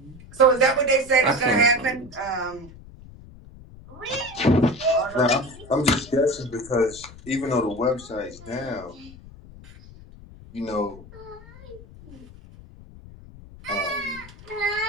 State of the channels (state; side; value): noise; left; rumble, 19 dB below the sound